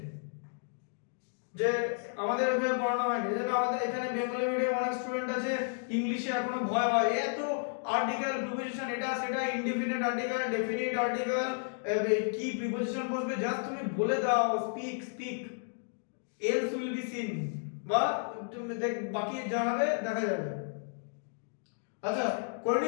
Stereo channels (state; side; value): silent; right; digital silence